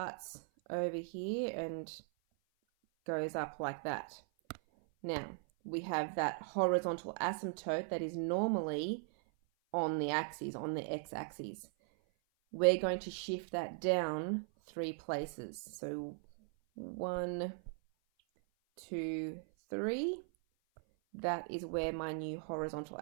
over here and goes up like that. Now, we have that horizontal asymptote that is normally on the axis, on the x-axis. We're going to shift that down 3 places. So 1, 2, 3. That is where my new horizontal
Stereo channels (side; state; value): left; silent; 52 dB below the other